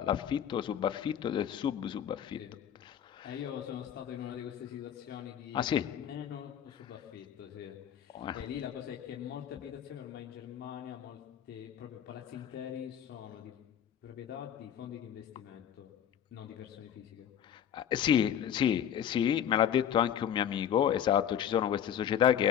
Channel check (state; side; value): quieter; right; 9.4 dB